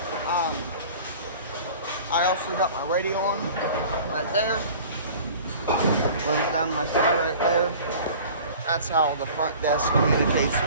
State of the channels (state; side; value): inverted; both; correlation -0.43